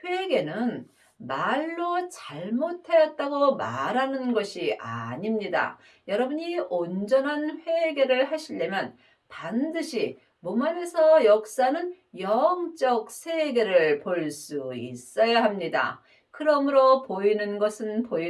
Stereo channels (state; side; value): identical; both; correlation 1.00